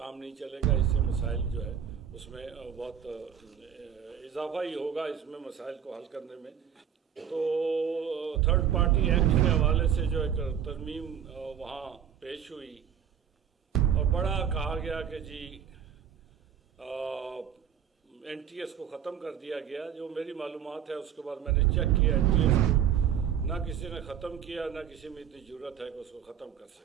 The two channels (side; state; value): left; quieter; 8.8 dB